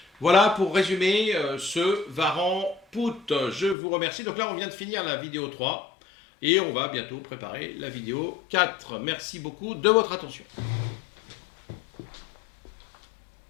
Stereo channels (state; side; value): drops out; right; at 3.8 s